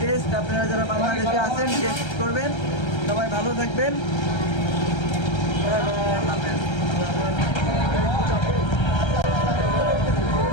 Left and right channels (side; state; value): right; late; 1.3 ms